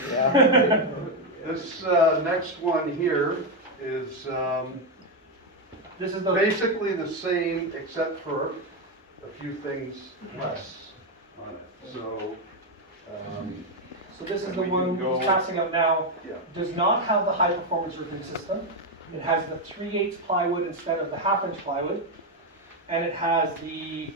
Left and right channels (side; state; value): both; normal; correlation 0.06